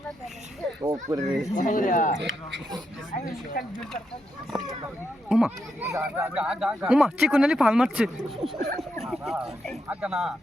ওমা ওমা চিকুনালি ফাল মারছে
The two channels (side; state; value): both; normal; correlation 0.83